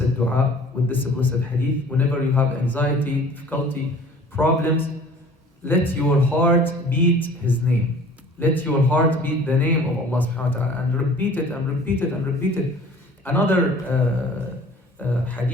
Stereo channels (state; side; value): normal; both; correlation 0.48